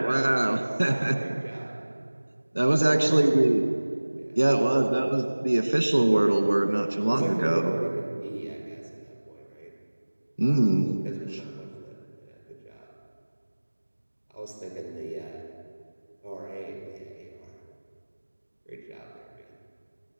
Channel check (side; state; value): both; inverted; correlation -1.00